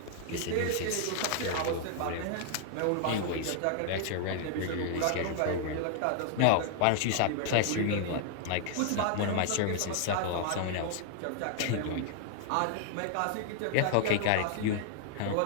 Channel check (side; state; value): both; different; correlation 0.00